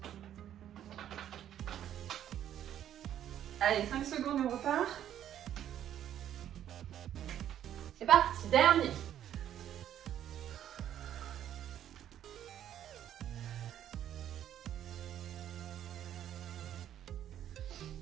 Allez, 5 secondes et on repart. C'est parti, dernier.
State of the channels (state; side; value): quieter; left; 10.7 dB